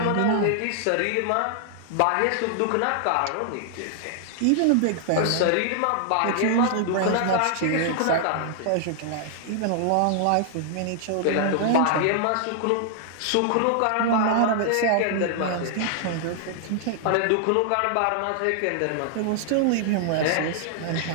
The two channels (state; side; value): different; both; correlation 0.00